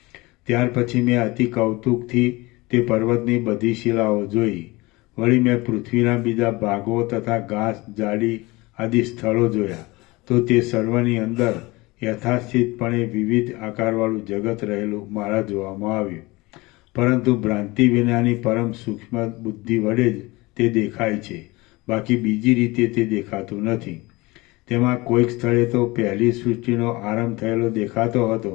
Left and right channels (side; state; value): right; quieter; 22.5 dB